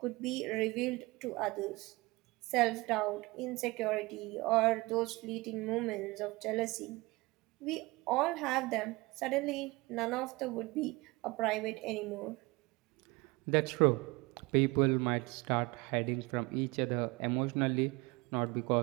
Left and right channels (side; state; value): left; quieter; 23.1 dB